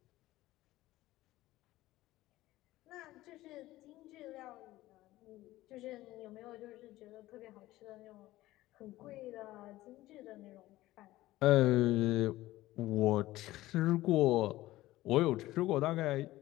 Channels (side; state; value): right; quieter; 16.7 dB